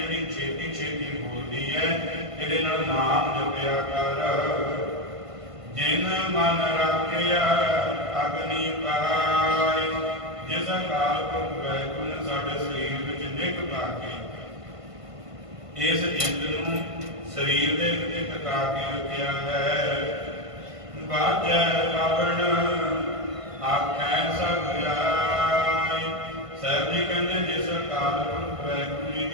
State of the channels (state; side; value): late; left; 1.5 ms